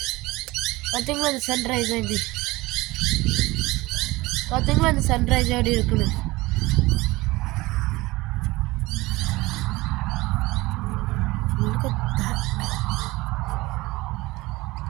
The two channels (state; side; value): quieter; left; 20.6 dB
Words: பார்த்தீங்களா? அந்த சன்ரைஸ் எப்படி பார்த்தீங்களா? அந்த சன்ரைஸ் எப்படி இருக்குன்னு.